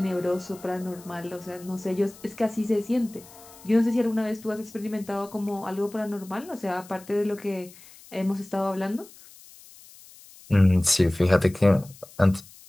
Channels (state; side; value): noise; left; hiss, 22 dB below the sound